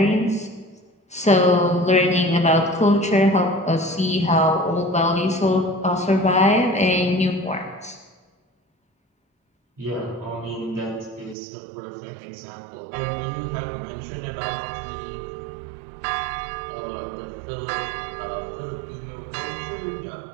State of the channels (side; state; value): left; drops out; at 11.4 s